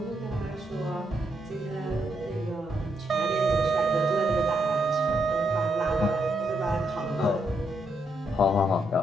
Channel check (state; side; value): normal; both; correlation 0.78